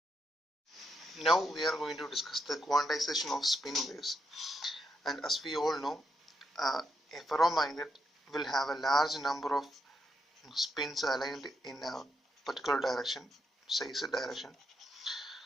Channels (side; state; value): both; normal; correlation 0.80